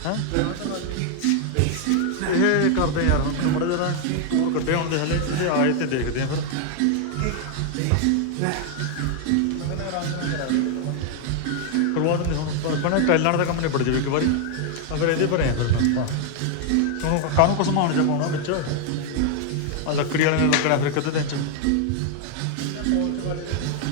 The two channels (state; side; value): different; both; correlation 0.00